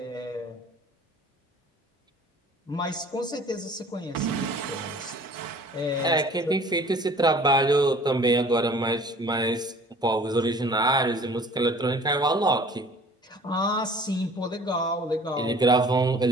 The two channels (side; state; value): both; normal; correlation 0.49